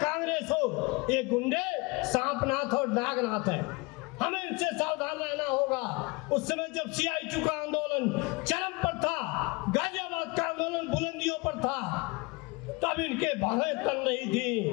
हो, ये गुंडे सांपनाथ और नागनाथ है। हमें इनसे सावधान रहना होगा। उस समय जब CITU का आंदोलन चरम पर था, गाजियाबाद का आंदोलन बुलंदियों पर था, तब इनके बाहें तन रही थी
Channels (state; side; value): quieter; right; 26.3 dB